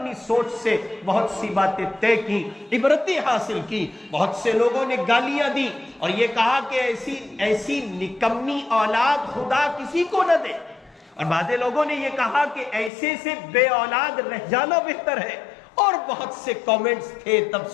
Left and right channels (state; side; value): drops out; right; at 12.9 s